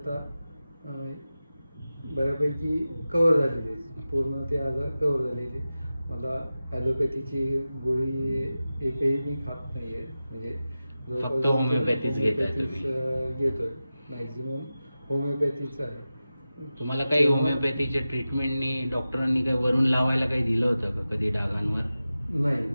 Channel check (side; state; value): both; inverted; correlation -0.94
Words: बऱ्यापैकी कव्हर झालेले, पूर्ण ते आजार कव्हर झालेले. मला ॲलोपॅथीची गोळी एकही मी खात नाही आहे. म्हणजे फक्त होमिओपॅथीच घेतोय. मॅक्झिमम होमिओपॅथीचं आहे. तुम्हाला काही होमिओपॅथीच्या ट्रीटमेंटनी डॉक्टरांनी काही वरून लावायला काही दिलं होतं का कधी डागांवर? नाही,